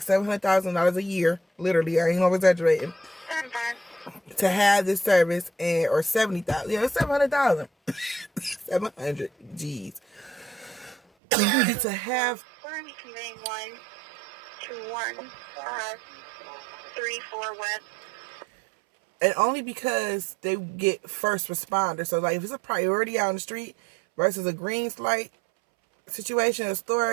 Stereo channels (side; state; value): left; drops out; at 11.0 s